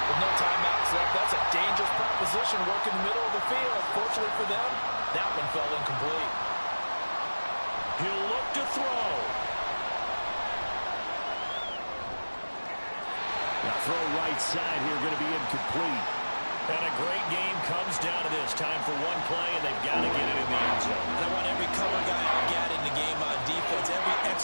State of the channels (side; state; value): both; inverted; correlation -1.00